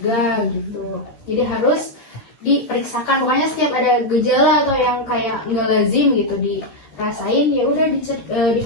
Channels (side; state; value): right; late; 13 ms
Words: gitu. Jadi harus diperiksakan, pokoknya setiap ada gejala atau yang kayak nggak lazim gitu dirasain ya udah